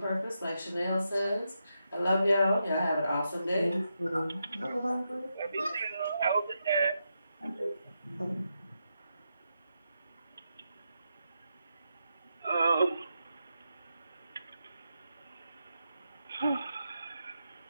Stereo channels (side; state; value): both; inverted; correlation -0.85